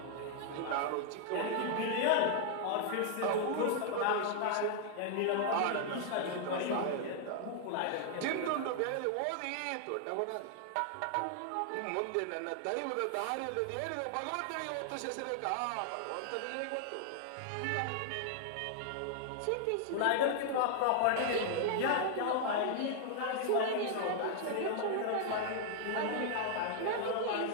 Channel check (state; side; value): different; both; correlation 0.00